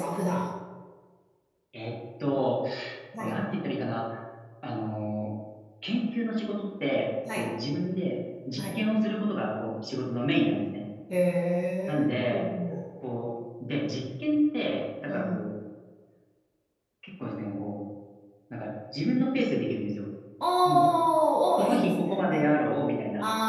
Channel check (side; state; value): both; identical; correlation 1.00